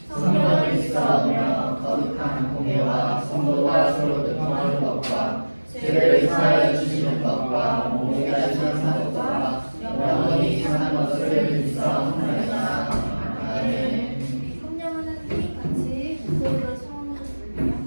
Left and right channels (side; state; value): both; inverted; correlation -1.00